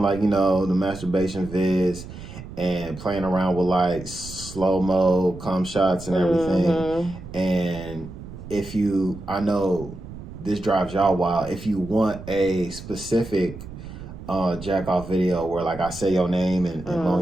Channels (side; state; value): right; noise; rumble, 13 dB below the sound